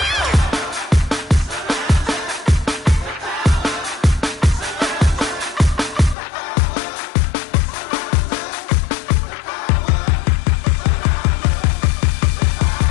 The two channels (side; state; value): right; drops out; at 6.2 s